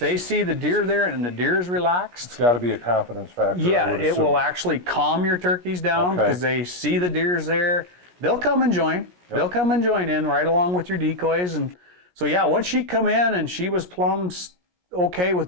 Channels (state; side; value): late; left; 17 ms